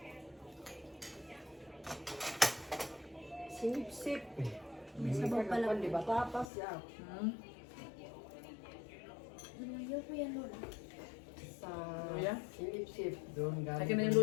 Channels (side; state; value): right; drops out; at 6.5 s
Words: Sip-sip. May sabaw pala. Di ba tapas yan? Luyo po yan, Lola. Sa Luya? sip-sip. Doon galing. Akin na yung